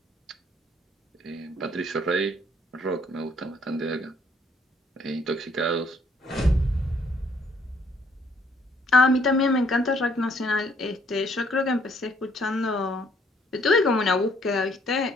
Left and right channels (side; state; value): both; normal; correlation 0.65